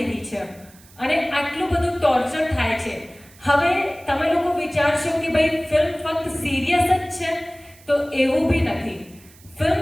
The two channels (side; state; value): right; noise; hiss, 25 dB below the sound